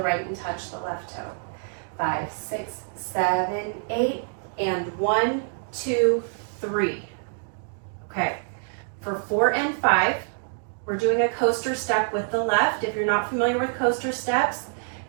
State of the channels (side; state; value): left; silent; digital silence